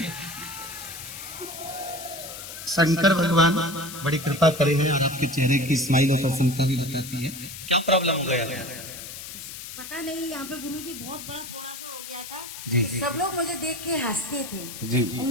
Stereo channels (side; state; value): left; noise; hiss, 11 dB below the sound